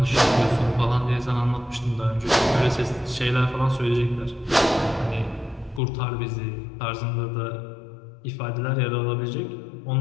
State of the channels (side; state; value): right; drops out; at 5.8 s